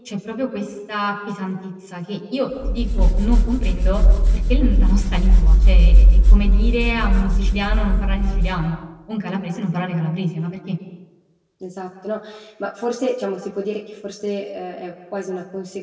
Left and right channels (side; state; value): both; identical; correlation 1.00